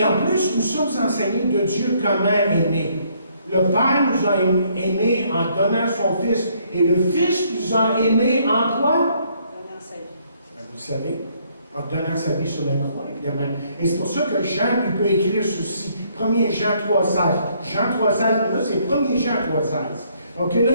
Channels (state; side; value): inverted; both; correlation -0.68